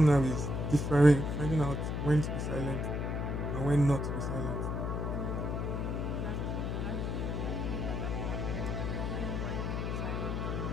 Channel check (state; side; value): noise; left; hum, 1 dB below the sound